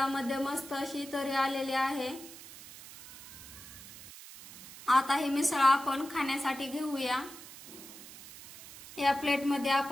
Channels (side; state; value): right; noise; hiss, 16 dB below the sound